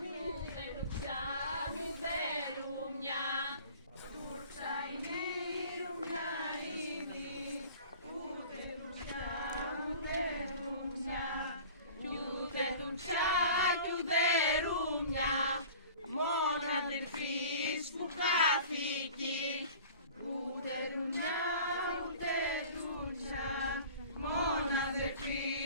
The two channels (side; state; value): both; inverted; correlation -0.43